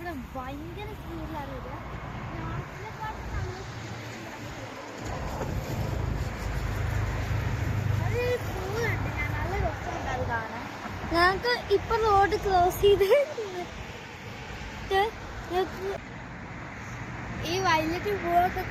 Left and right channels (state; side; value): identical; both; correlation 1.00